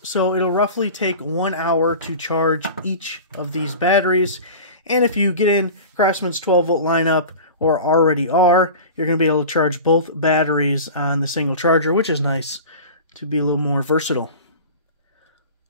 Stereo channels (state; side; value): inverted; both; correlation -0.35